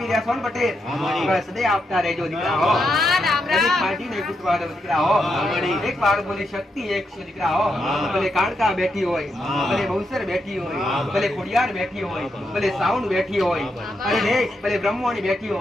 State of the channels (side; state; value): both; normal; correlation 0.82